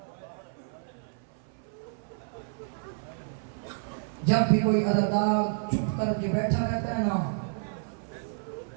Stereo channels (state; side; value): silent; left; 58 dB below the other